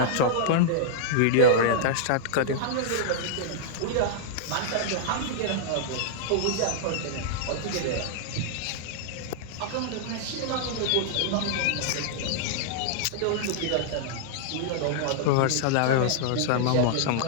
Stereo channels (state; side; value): different; both; correlation -0.01